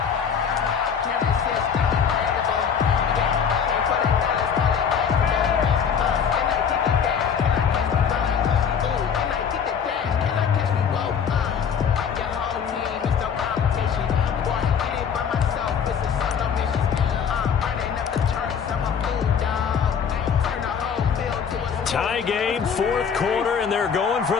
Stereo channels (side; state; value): right; quieter; 7.1 dB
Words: Tie game, fourth quarter, and they're going for